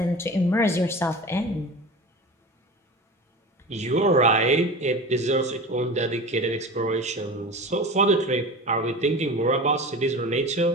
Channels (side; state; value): both; normal; correlation 0.32